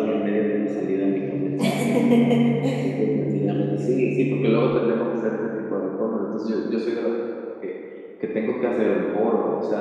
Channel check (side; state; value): both; identical; correlation 1.00